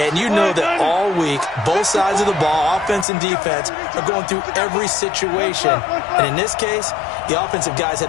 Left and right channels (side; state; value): right; drops out; at 3.1 s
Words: you know that all week, both sides of the ball, offense and defense, are going through every situation. And in this case, the offensive guys